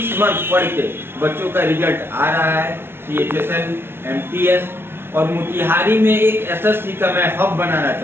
मंथ पढ़ के बच्चों का रिजल्ट आ रहा है, CHSL, MTS। और मोतिहारी में एक SSC का मैं हब बनाना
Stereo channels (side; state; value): left; late; 0.11 ms